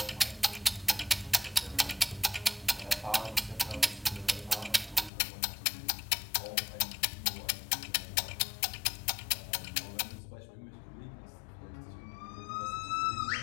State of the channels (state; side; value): drops out; right; at 5.1 s